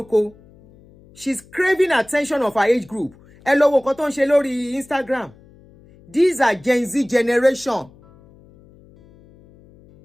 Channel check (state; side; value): noise; left; hum, 26 dB below the sound